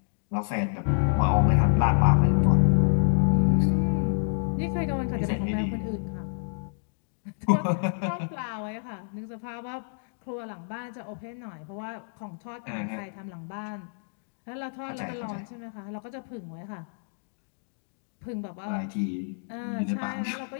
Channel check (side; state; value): right; silent; digital silence